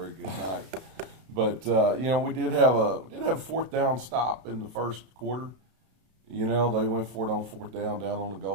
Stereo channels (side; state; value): left; late; 32 ms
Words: good night. But we did have a fourth down stop in the first quarter. They went for it on fourth down on the